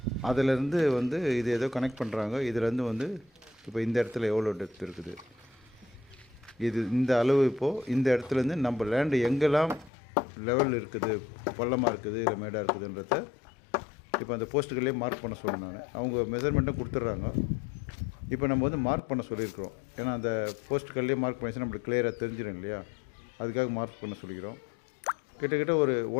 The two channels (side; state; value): right; drops out; at 9.9 s